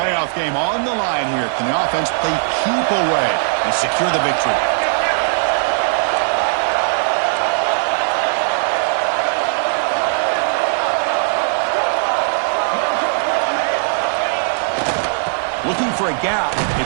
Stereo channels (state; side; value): silent; left; 63 dB below the other